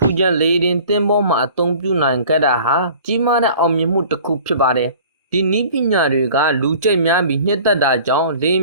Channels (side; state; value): both; inverted; correlation -0.46